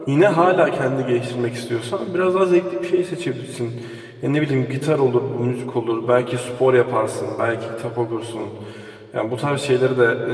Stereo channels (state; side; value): identical; both; correlation 1.00